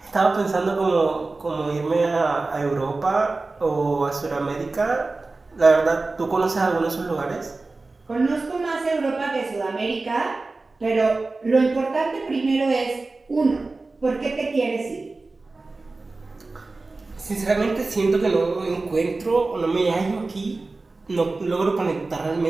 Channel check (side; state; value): left; quieter; 3.5 dB